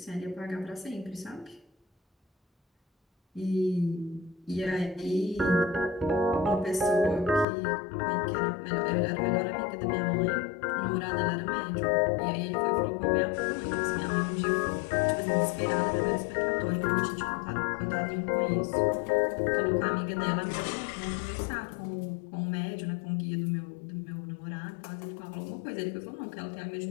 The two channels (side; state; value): right; drops out; at 7.5 s